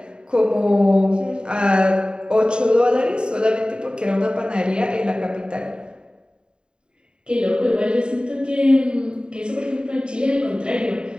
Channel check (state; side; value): late; left; 0.050 ms